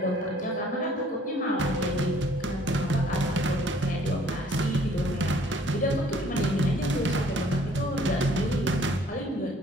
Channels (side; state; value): both; normal; correlation 0.58